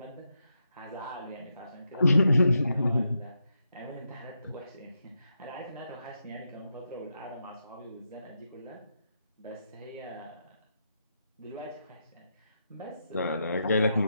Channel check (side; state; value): both; inverted; correlation -0.84